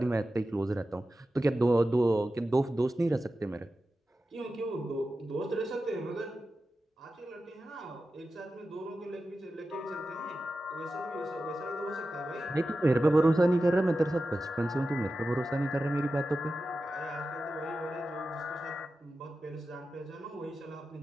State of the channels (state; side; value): normal; both; correlation 0.92